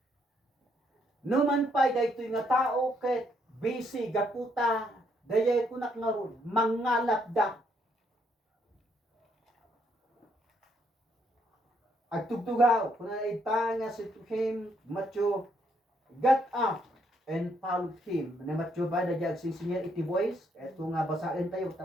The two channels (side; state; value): both; normal; correlation 0.72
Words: Numan pay daytoy nga tao ket busy gaputa dayay kunak nga ron mangalapda. Agtugtugaw kunana ita nga si him Matthew got up and followed him. Na Matthew ba na diag singer iti voice? Ito nga basahin tayo